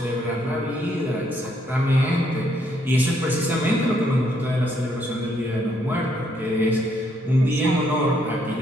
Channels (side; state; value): both; normal; correlation 0.72